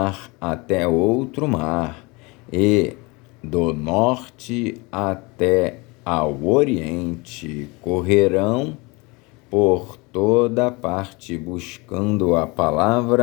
até outro mar, e do norte até ao oriente, correrão por toda parte buscando a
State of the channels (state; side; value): quieter; right; 26.3 dB